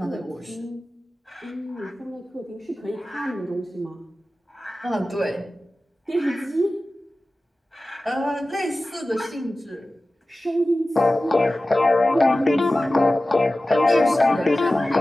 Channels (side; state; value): both; normal; correlation 0.96